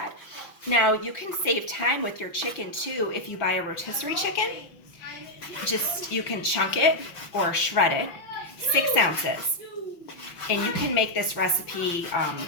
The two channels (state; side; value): late; right; 5.8 ms